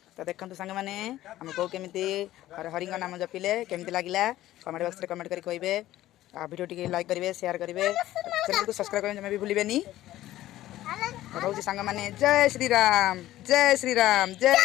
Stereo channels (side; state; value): right; quieter; 14.7 dB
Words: तो देखो सांग मैंने आम को केमी हरि नाम जपिले केमती लगे कमेंट बॉक्स में कमेंट कर कहे वीडियो टी लाइक करेंगे शेयर करेंगे चैनल को सब्सक्राइब करने भी भूलें कहूँ सांग मैंने जय श्रीराम जय श्रीराम जय